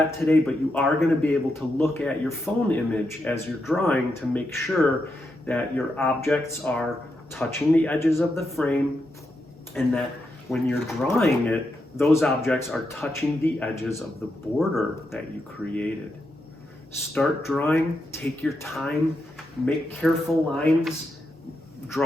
today, but you are going to be able to look at your phone image as you're drawing to make sure that your objects are touching the edges of the frame, and that when you're drawing it, those objects are touching the edges of the border that you created. Start drawing, take your time, make careful lines,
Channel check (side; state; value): both; normal; correlation 0.84